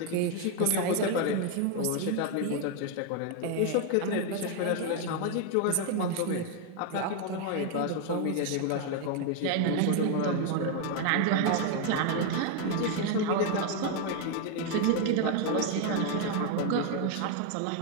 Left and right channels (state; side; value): different; both; correlation 0.01